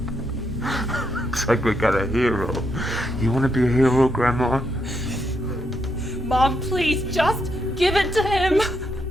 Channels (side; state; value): both; normal; correlation 0.79